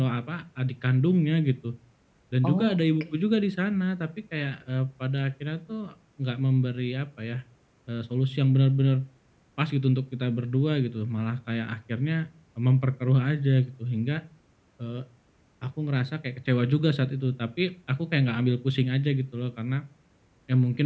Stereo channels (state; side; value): identical; both; correlation 1.00